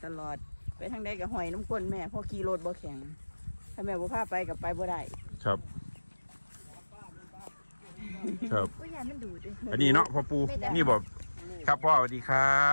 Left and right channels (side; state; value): both; inverted; correlation -1.00